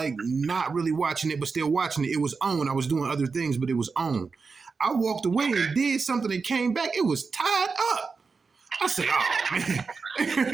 not really watching it, but still watching it. It was on. I was doing other things, but it was on. I walked away Okay. and did something and came back. It was tied up. I said, "Oh man!"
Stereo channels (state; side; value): quieter; left; 4.8 dB